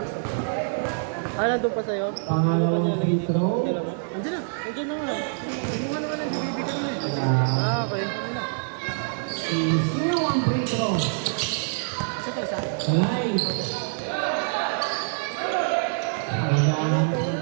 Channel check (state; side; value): silent; left; digital silence